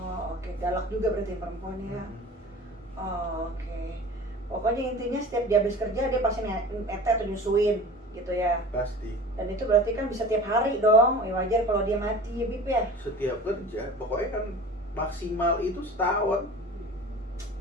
Oke. Galak juga berarti yang perempuan ya. Oke. Pokoknya intinya setiap dia habis kerja, dia pasti nete atau nyusuin gitu ya. Pasti. Dan itu berarti kan bisa tiap hari dong. Wajar kalau dia mati ya, Bib ya. Setiap kerja, pokoknya kan maksimal itu setahun.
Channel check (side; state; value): both; normal; correlation 0.39